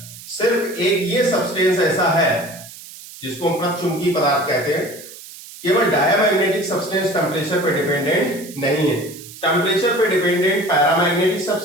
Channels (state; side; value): noise; right; hiss, 16 dB below the sound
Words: सिर्फ एक ये सब्सटेंस ऐसा है जिसको हम चुंबकीय पदार्थ कहते हैं। केवल डायमैग्नेटिक सब्सटेंस टेम्परेचर पे डिपेंडेंट नहीं है, टेम्परेचर पे डिपेंडेंट पैरामैग्नेटिक